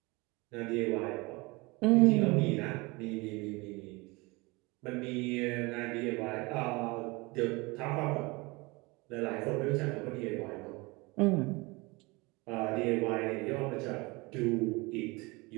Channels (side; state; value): left; quieter; 25.1 dB